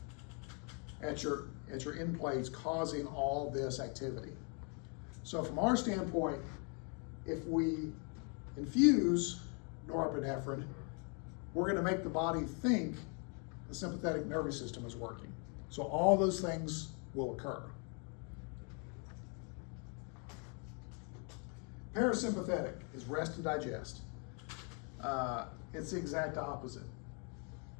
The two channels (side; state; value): right; quieter; 37.3 dB